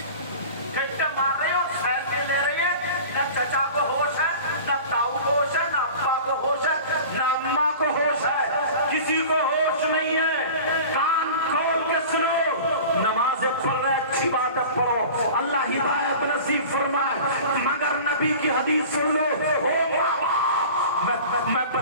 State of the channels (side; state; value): both; inverted; correlation -0.39